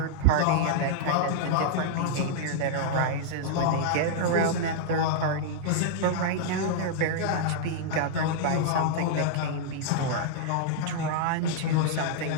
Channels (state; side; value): different; both; correlation -0.01